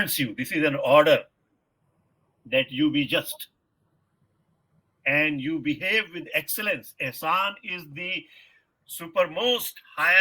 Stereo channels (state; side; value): identical; both; correlation 1.00